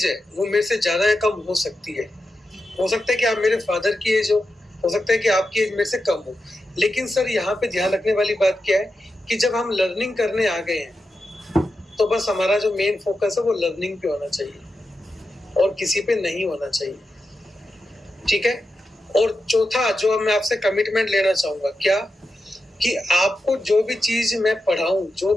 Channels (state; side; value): normal; both; correlation 0.89